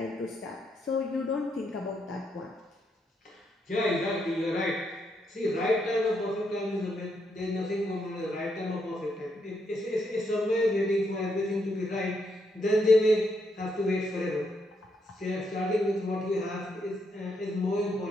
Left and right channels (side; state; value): both; normal; correlation 0.78